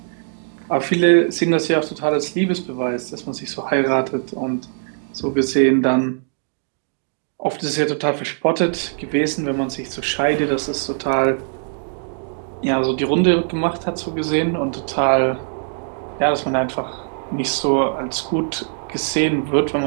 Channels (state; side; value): silent; left; digital silence